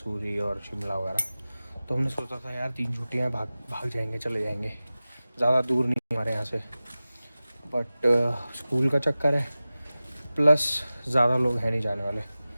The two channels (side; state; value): both; inverted; correlation -0.96